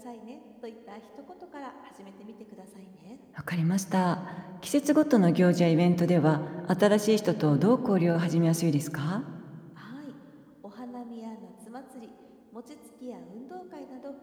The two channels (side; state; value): both; identical; correlation 1.00